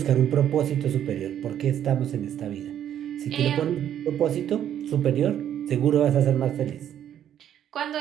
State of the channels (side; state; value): left; quieter; 10.3 dB